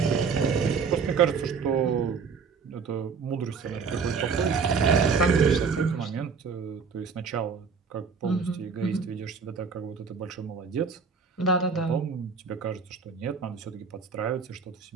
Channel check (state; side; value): quieter; left; 5.5 dB